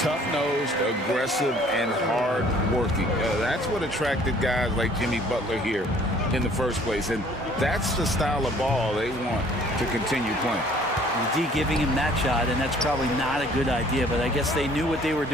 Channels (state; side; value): normal; both; correlation 0.56